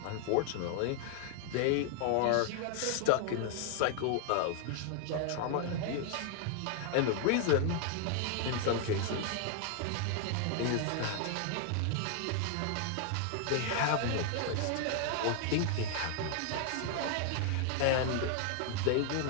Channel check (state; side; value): different; both; correlation 0.00